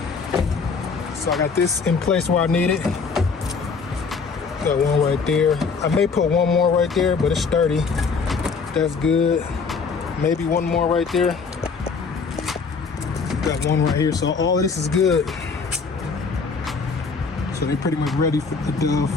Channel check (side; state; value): right; quieter; 5.0 dB